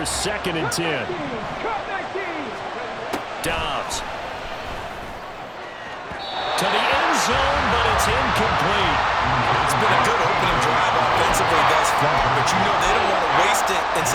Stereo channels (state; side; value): identical; both; correlation 1.00